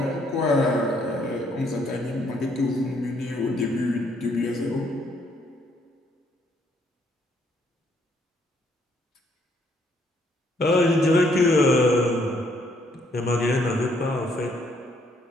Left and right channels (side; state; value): both; normal; correlation 0.69